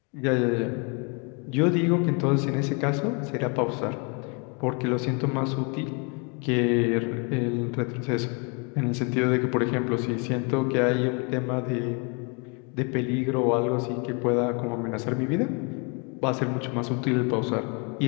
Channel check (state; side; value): quieter; right; 33.3 dB